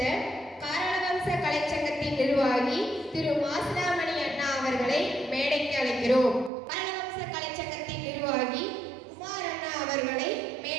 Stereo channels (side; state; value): left; drops out; at 6.5 s